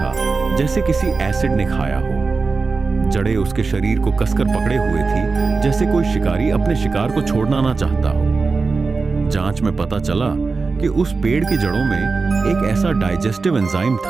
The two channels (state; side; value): quieter; left; 4.3 dB